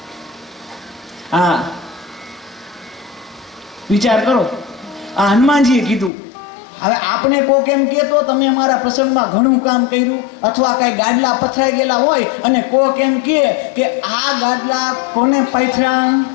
હા, વિચાર કરો, આ હનુમાનજીએ કીધું. હવે આપણે કોક એમ કહેતો તમે અમારા પ્રસંગમાં ઘણું કામ કર્યું, અથવા કઈ ગાડલા પથરાઈ ગયેલા હોય અને કોક એમ કહે કે આ ગાડલા કોને પાથરા.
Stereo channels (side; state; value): right; drops out; at 6.1 s